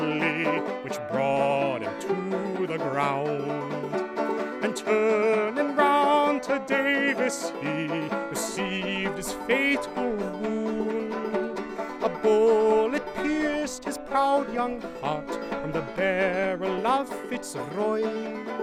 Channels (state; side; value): identical; both; correlation 1.00